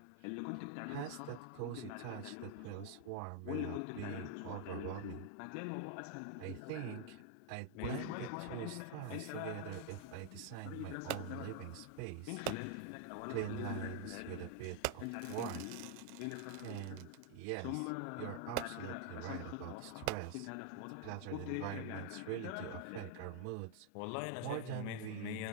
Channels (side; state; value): both; different; correlation 0.00